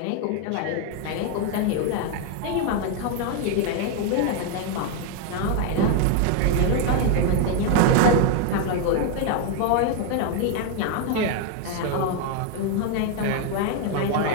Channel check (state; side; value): different; both; correlation 0.01